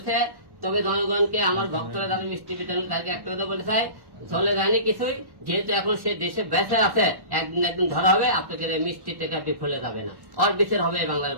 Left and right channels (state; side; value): late; left; 1.1 ms